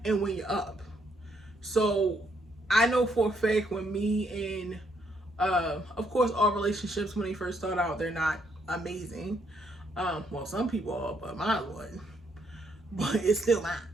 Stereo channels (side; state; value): both; normal; correlation 0.73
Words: and when you're up. So I know for a fact when me and of course all relationships when they first start out, they're not amazing. Well, some people are, but mine wasn't. But it's still mine.